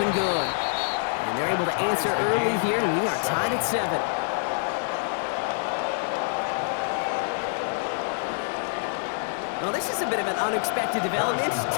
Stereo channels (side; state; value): right; silent; digital silence